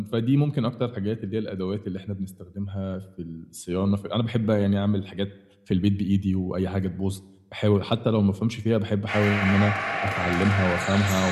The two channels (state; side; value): identical; both; correlation 1.00